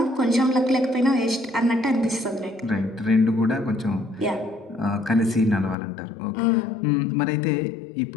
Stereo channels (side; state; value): right; drops out; at 5.8 s